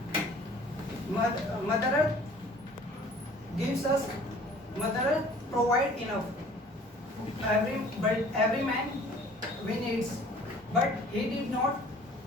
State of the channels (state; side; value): normal; both; correlation 0.51